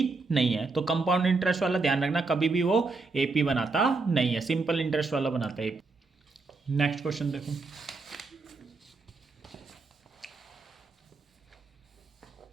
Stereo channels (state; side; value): quieter; left; 3.9 dB